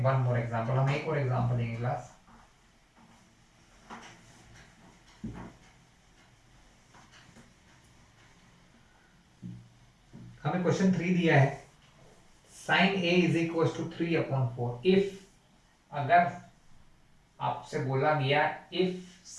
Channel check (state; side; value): identical; both; correlation 1.00